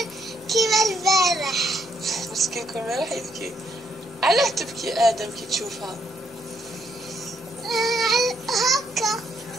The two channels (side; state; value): both; normal; correlation 0.73